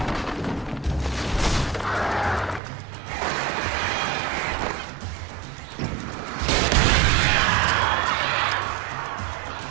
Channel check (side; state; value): left; drops out; at 2.6 s